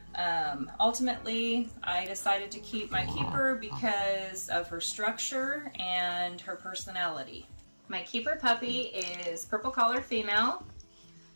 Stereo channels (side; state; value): both; inverted; correlation -1.00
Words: Ultimately, I decided to keep my keeper because of her structure and her personality. My keeper puppy is purple collar female,